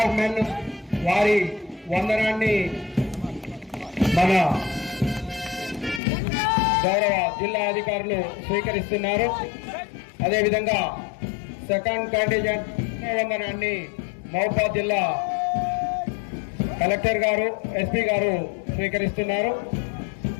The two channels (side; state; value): right; drops out; at 6.0 s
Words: మెన్ వారి వందనాన్ని మన గౌరవ జిల్లా అధికారులు స్వీకరిస్తున్నారు. అదేవిధంగా సెకండ్ కంటింజెంట్ వందనాన్ని మహబూబాబాద్ జిల్లా కలెక్టర్ గారు ఎస్పీ గారు స్వీకరిస్తున్నారు.